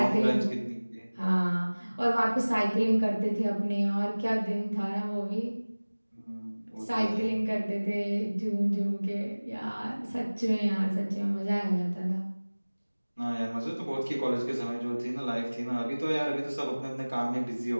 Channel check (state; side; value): inverted; both; correlation -1.00